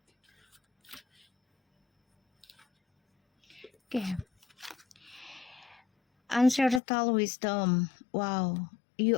Okay. Ancestral wisdom. Wow.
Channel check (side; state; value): right; drops out; at 6.8 s